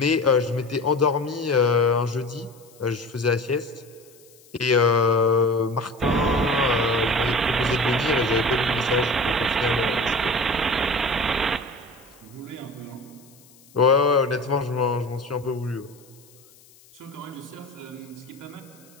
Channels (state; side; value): noise; left; hiss, 27 dB below the sound